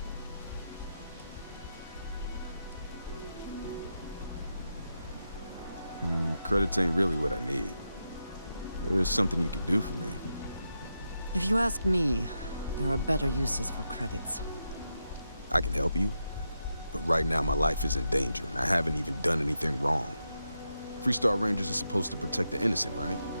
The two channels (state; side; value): inverted; both; correlation -0.86